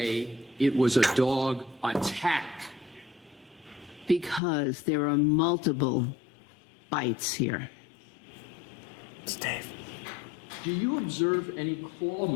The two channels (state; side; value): drops out; right; at 4.4 s